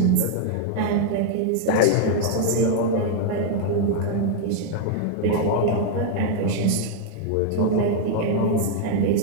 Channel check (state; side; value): different; both; correlation 0.00